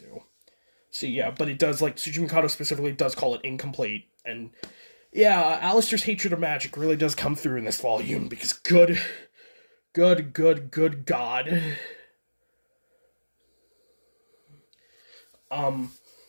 So yeah, but it does, like, Tsuchi Mikado specifically does call it incomplete, and yeah, Alistair's hatred of magic really does come through in this volume, because good God.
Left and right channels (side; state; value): both; inverted; correlation -1.00